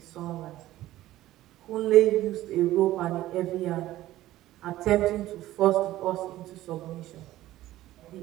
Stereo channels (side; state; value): left; quieter; 15.2 dB